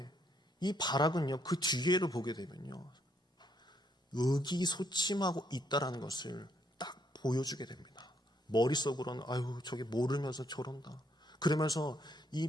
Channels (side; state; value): both; normal; correlation 0.71